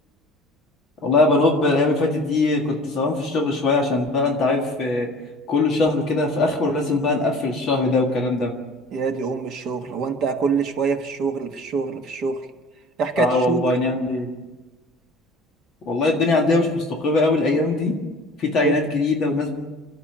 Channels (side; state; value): both; normal; correlation 0.44